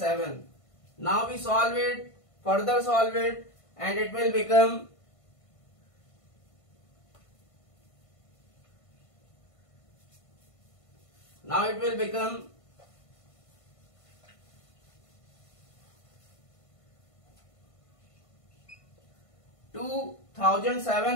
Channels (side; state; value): right; late; 1.5 ms